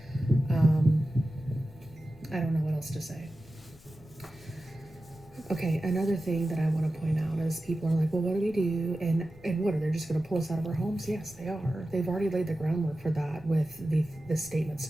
I don't know what else to say. Okay, another thing that I want to point out is people are like, well, what do we do? And what, are they just going to pull us out of our homes? Yes, they are. They've already laid the groundwork for that with the statement.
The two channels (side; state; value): left; noise; hum, 25 dB below the sound